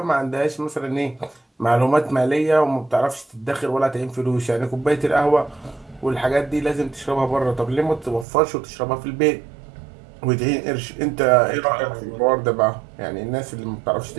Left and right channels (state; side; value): drops out; left; at 8.2 s